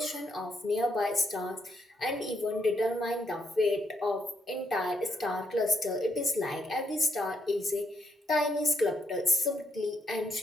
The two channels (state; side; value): normal; both; correlation 0.76